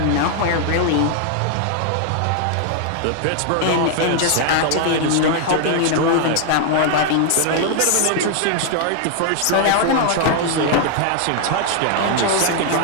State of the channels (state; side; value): different; both; correlation 0.00